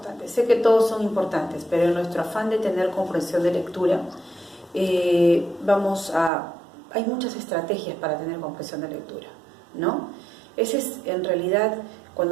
Sé que todos son importantes, pero en nuestro afán de tener comprensión de lectura, hay muchas estrategias para tener comprensión de lectura, ¿no? Ese es, en realidad,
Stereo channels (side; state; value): left; drops out; at 6.3 s